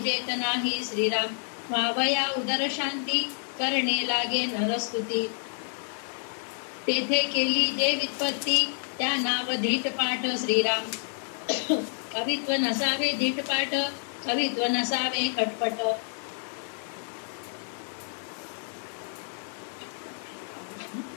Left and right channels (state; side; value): silent; right; 59 dB below the other